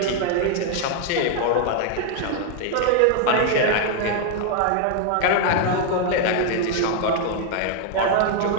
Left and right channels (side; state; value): both; different; correlation 0.00